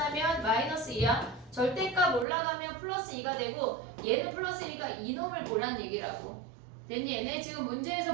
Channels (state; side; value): drops out; left; at 2.2 s